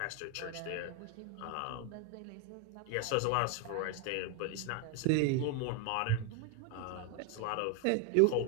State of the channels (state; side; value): different; both; correlation 0.01